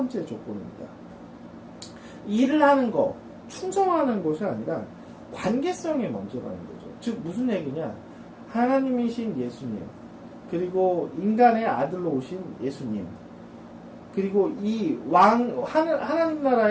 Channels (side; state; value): both; identical; correlation 1.00